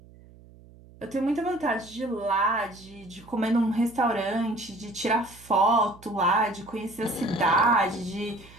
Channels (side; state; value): right; noise; hum, 23 dB below the sound